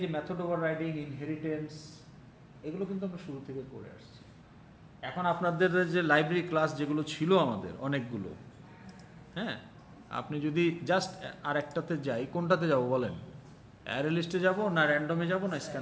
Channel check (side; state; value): both; identical; correlation 1.00